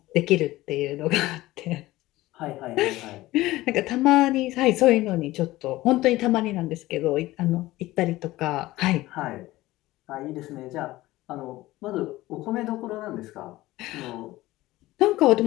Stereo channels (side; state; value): right; quieter; 17.6 dB